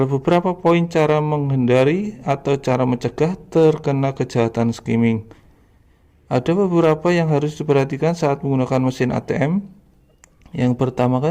beberapa poin cara menghindari atau cara mencegah terkena kejahatan skimming. Ada beberapa yang harus diperhatikan saat menggunakan mesin ATM. Yang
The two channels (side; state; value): both; identical; correlation 1.00